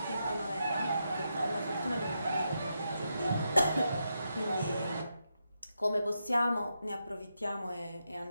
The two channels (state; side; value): inverted; both; correlation -0.84